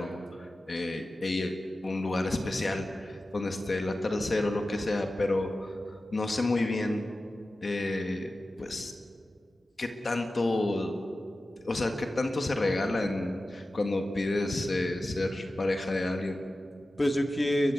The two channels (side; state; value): both; normal; correlation 0.94